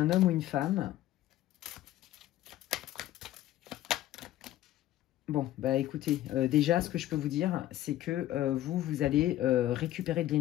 homme ou une femme. Bon, bah écoutez, déjà, ce que je peux vous dire, c'est que vous allez récupérer de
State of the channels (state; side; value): quieter; right; 14.0 dB